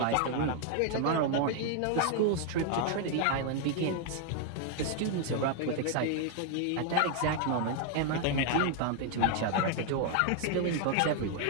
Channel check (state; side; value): different; both; correlation 0.00